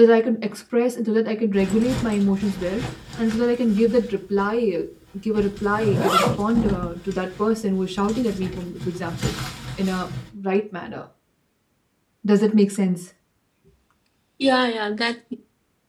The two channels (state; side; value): identical; both; correlation 1.00